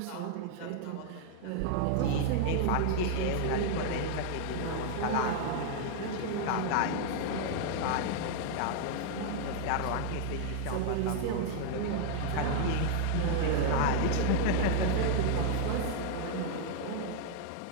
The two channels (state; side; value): different; both; correlation 0.00